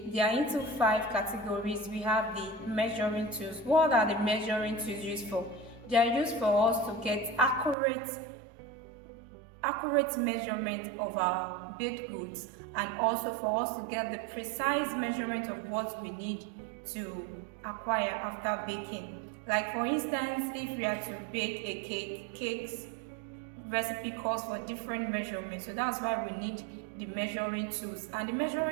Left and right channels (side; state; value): left; drops out; at 7.8 s